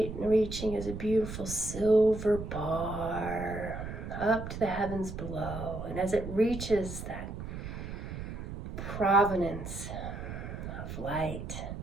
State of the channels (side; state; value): right; noise; rumble, 8 dB below the sound